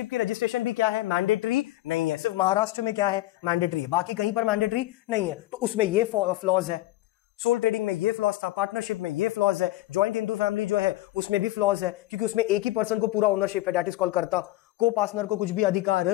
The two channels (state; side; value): quieter; right; 16.7 dB